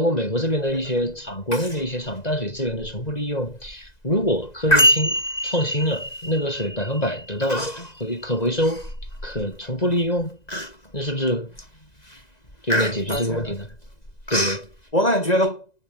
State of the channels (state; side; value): late; right; 1.9 ms